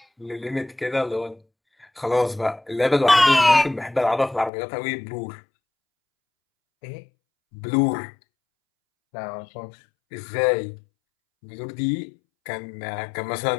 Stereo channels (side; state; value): right; drops out; at 4.5 s